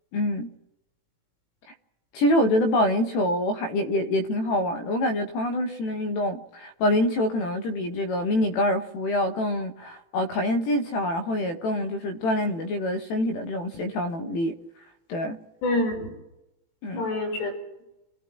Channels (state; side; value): late; right; 18 ms